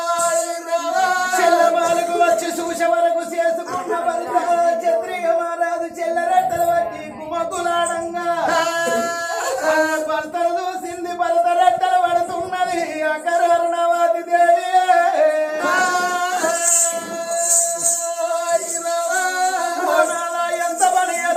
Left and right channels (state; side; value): identical; both; correlation 1.00